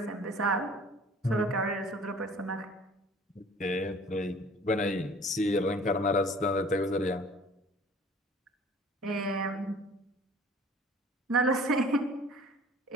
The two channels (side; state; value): both; normal; correlation 0.49